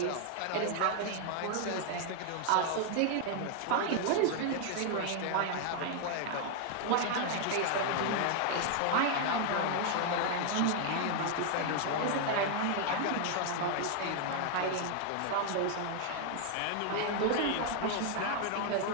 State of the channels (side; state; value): both; different; correlation 0.00